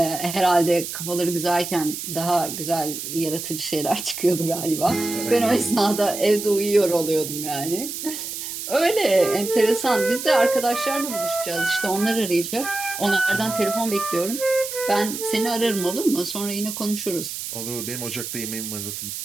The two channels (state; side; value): noise; right; hiss, 7 dB below the sound